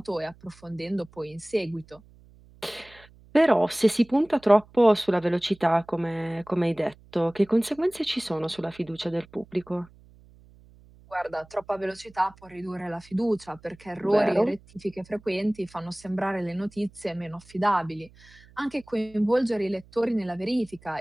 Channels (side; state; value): right; noise; hum, 25 dB below the sound